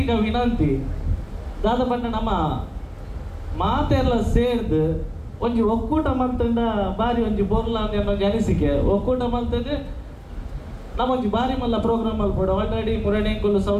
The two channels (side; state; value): both; identical; correlation 1.00